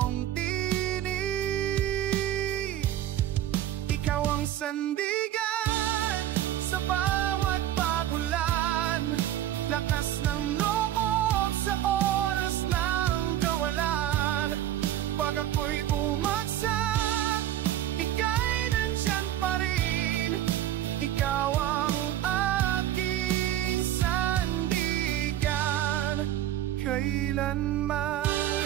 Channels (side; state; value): left; quieter; 12.3 dB